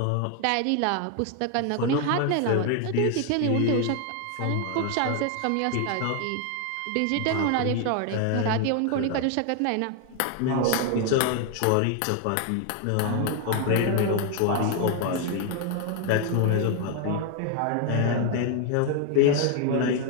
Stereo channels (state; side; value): different; both; correlation 0.01